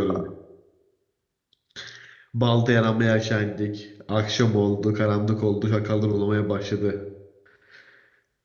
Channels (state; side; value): identical; both; correlation 1.00